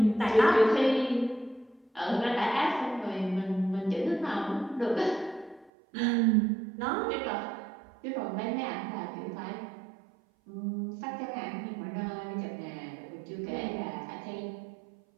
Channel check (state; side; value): drops out; left; at 5.7 s